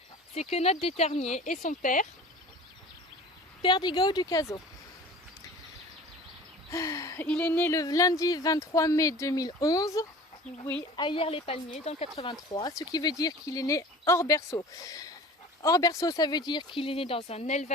c'est Quenotte d'Eternier, et son père, Perdigo du Caso. Il est né le lundi 23 mai 2011. Oui, à Yerles-les-Palmiers, dans le 83, ce qui veut dire qu'il est né hors berceau. Hors berceau, ça veut dire qu'il est né dans un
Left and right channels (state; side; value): normal; both; correlation 0.41